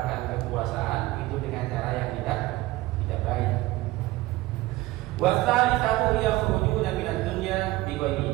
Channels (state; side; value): quieter; left; 18.3 dB